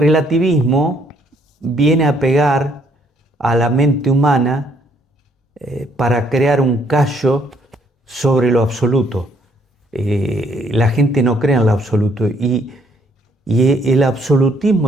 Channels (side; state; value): both; normal; correlation 0.68